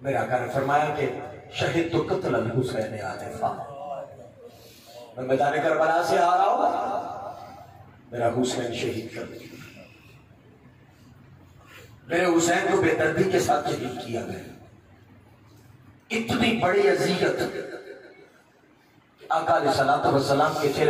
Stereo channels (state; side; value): identical; both; correlation 1.00